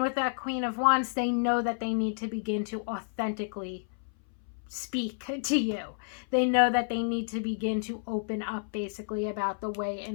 with that Queen of Wands, they know that they need to begin to authentically speak to you. They know that they need to begin to open up basically about the way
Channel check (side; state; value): right; silent; 58 dB below the other